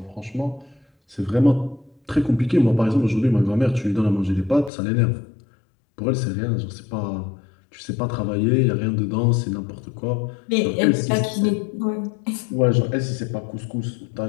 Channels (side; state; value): right; drops out; at 4.7 s